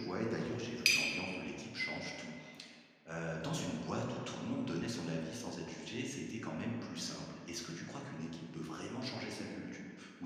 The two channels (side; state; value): both; identical; correlation 1.00